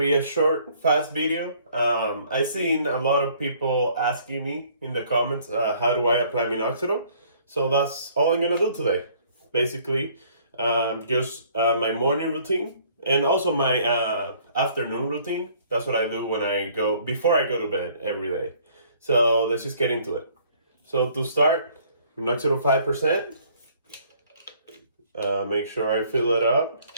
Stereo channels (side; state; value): both; inverted; correlation -0.59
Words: a short, fast video. I've seen a lot of people asking me in the comments, how do I apply Minoxidil? So that's all I'm gonna do today. Basically, just my morning routine and also my afternoon routine. That's what I do before I go to bed every day. So let's just get into it. So to start, Minoxidil 5%. Make sure I fill it up